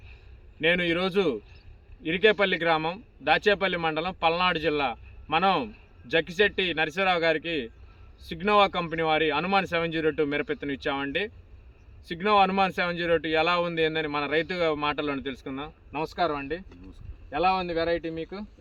నేను ఈరోజు ఇరికేపల్లి గ్రామం, దాచేపల్లి మండలం, పల్నాడు జిల్లా. మనం జక్కిశెట్టి నరసింహరావు గారికి సిగ్నోవా కంపెనీ వారి హనుమాన్ 702 మిరపెత్తును ఇచ్చామండి. సిగ్నోవా హనుమాన్ 702 ఎలా ఉంది ఏందని మన రైతు మాటల్లోనే తెలుసుకుందాం. నమస్కారం అండి. ఎలా ఉంది వెరైటీ? మీకు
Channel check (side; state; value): both; identical; correlation 1.00